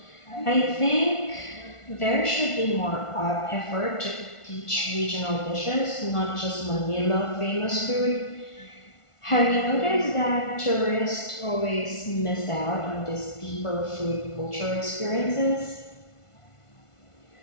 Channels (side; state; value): right; late; 1.5 ms